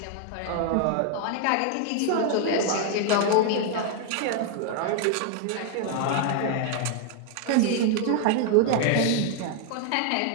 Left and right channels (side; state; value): both; different; correlation 0.00